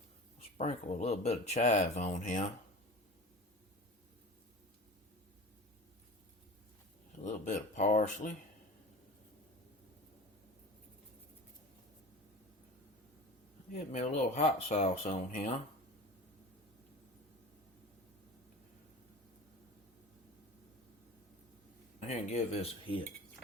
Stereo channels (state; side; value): normal; both; correlation 0.35